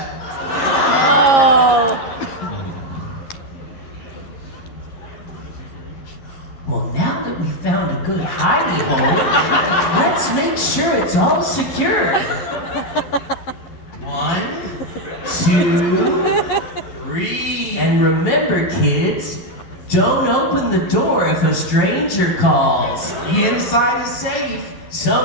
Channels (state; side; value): late; right; 11 ms